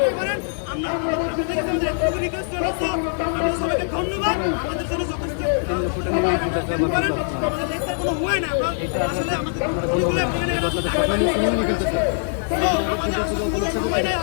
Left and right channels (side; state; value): right; silent; 64 dB below the other